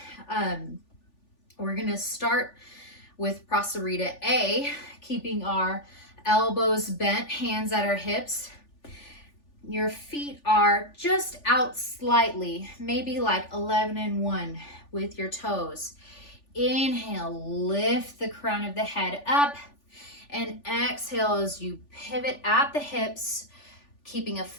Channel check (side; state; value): right; late; 3.4 ms